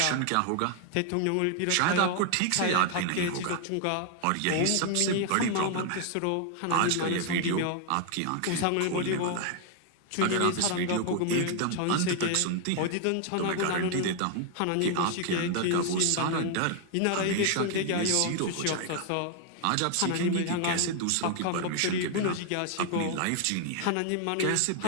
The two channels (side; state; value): both; different; correlation 0.00